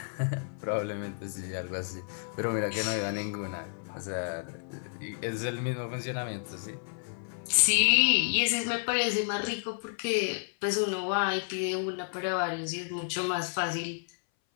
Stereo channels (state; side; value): silent; right; 57 dB below the other